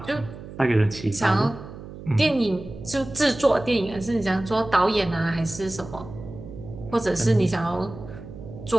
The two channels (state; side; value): noise; right; hum, 13 dB below the sound